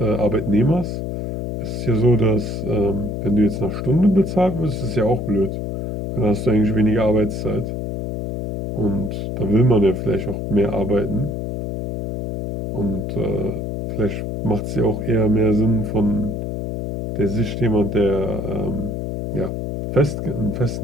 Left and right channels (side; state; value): left; noise; hum, 4 dB below the sound